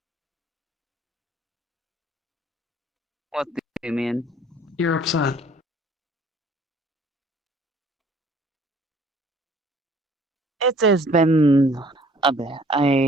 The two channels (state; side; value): normal; both; correlation 0.56